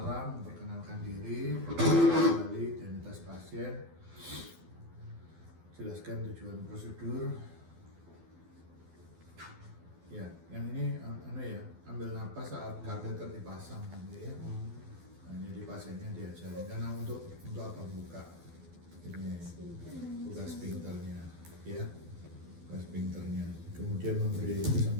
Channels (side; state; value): left; late; 12 ms